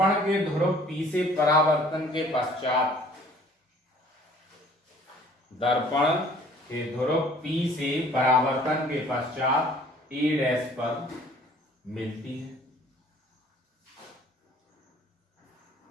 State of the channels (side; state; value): both; normal; correlation 0.53